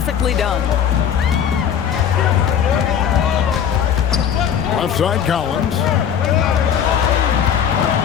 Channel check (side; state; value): right; quieter; 8.6 dB